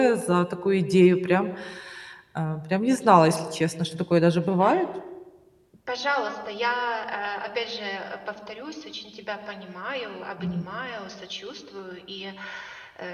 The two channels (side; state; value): both; identical; correlation 1.00